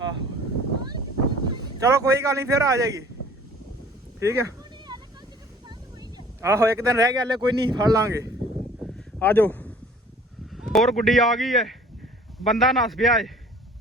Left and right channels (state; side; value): normal; both; correlation 0.50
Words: ਆਹੋ ਚਲੋ ਕੋਈ ਗੱਲ ਨਹੀਂ, ਫਿਰ ਆ ਜਾਏਗੀ। ਠੀਕ ਹੈ, ਆਹੋ ਇੱਕ ਦਿਨ ਰਹਿ ਗਿਆ ਹਲੇ, ਕੋਈ ਨਹੀਂ ਫੜ ਲਾਂਗੇ। ਆ ਜਾਓ। ਹੋਰ ਗੁੱਡੀ ਆ ਗਈ ਹੈ, ਬੰਦਾ ਨੱਸ ਪਿਆ ਏ।